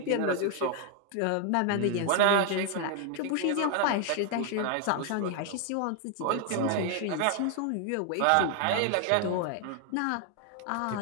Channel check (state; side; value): different; both; correlation 0.00